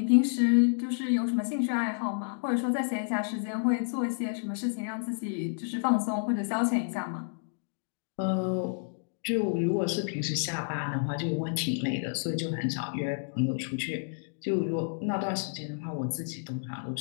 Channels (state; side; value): silent; right; digital silence